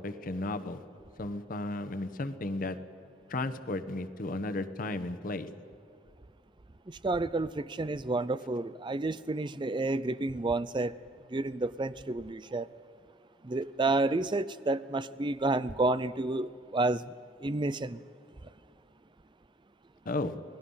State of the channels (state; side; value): normal; both; correlation 0.60